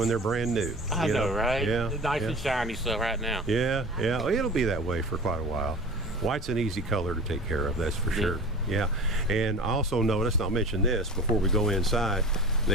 they're brand new. I know, right? Yeah. It's nice and shiny stuff right now. Yeah, yeah. Well, it'll be that way for quite a while. White's an easy color to take care of, that's for sure. Yeah. And I also noticed, and I'll mention this before we go inside,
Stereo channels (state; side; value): normal; both; correlation 0.36